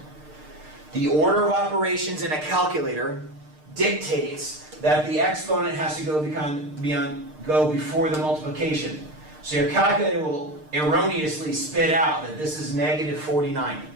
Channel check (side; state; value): left; late; 6.6 ms